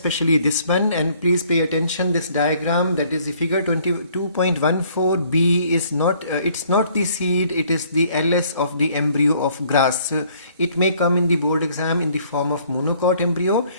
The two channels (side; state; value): both; inverted; correlation -0.61